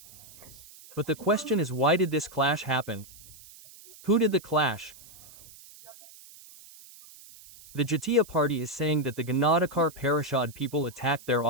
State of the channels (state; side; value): noise; right; hiss, 21 dB below the sound